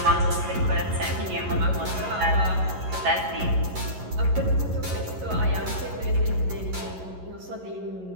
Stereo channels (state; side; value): late; left; 11 ms